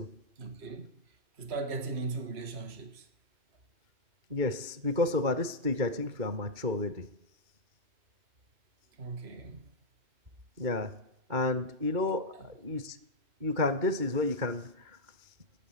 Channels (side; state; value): left; late; 2.3 ms